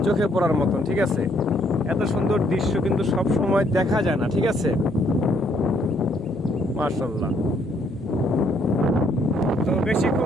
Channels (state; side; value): normal; both; correlation 0.69